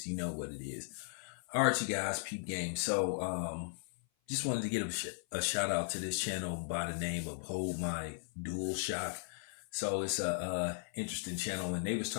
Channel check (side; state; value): right; silent; 53 dB below the other